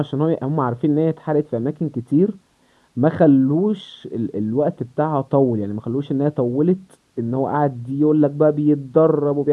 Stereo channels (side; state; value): both; identical; correlation 1.00